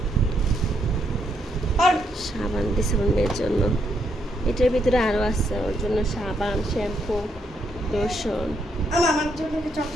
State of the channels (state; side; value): normal; both; correlation 0.76